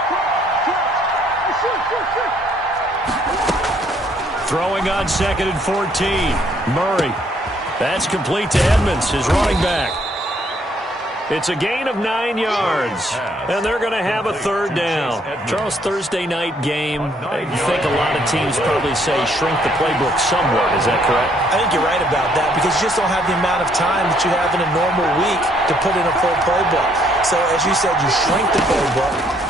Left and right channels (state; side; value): normal; both; correlation 0.67